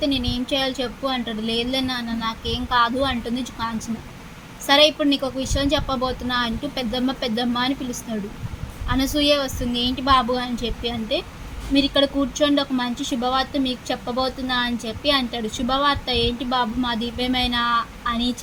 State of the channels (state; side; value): identical; both; correlation 1.00